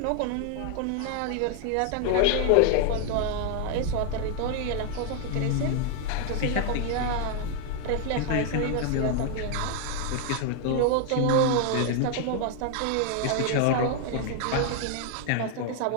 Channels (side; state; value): both; different; correlation 0.00